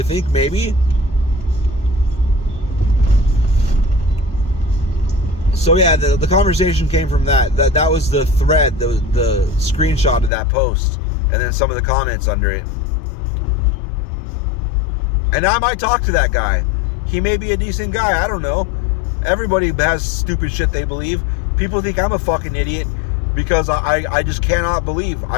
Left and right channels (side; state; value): right; drops out; at 10.3 s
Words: think maybe? So yeah, the conversation came from that. That was the thread, the screenshot of that post, and then some of the comments under it. And I might talk to that guy. He may be a decent guy. I don't know. Everybody has stupid shit they believe. People think I'm a fucking idiot because I just cannot believe.